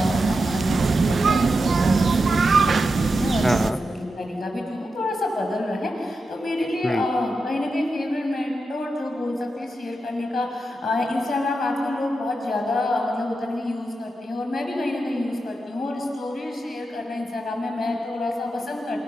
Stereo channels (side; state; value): both; normal; correlation 0.88